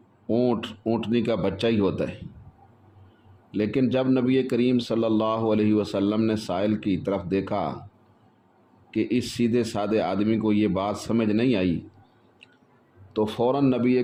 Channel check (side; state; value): both; identical; correlation 1.00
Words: اونٹنی کا بچہ ہی ہوتا ہے، لیکن جب نبی کریم صلی اللہ علیہ وسلم نے سائل کی طرف دیکھا کہ اس سیدھے سادے آدمی کو یہ بات سمجھ نہیں آئی تو فوراً نبی